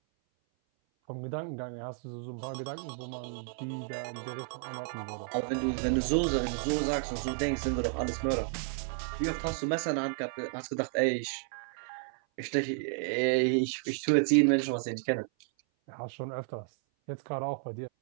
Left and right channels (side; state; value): left; silent; 56 dB below the other